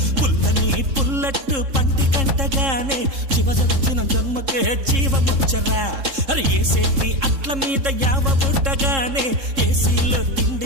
పుల్లని పుల్లట్టు పంటి కంటగానే జీవదొచ్చిన జన్మకే జీవమొచ్చరా. అరే ఏసేటి అట్ల మీద యావ బుట్టగానే ఏసీలో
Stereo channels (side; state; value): left; late; 3.7 ms